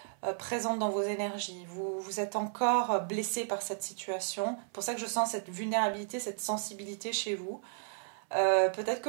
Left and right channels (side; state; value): left; silent; 55 dB below the other